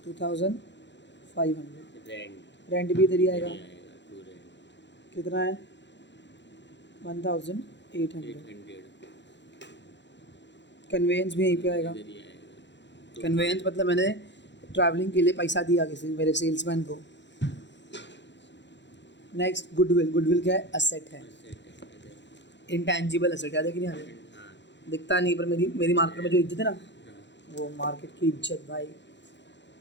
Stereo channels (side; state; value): right; late; 0.52 ms